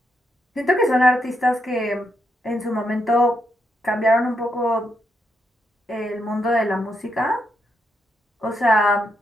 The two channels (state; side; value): normal; both; correlation 0.80